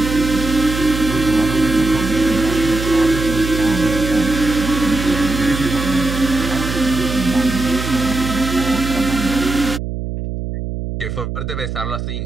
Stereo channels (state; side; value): noise; right; hum, 5 dB below the sound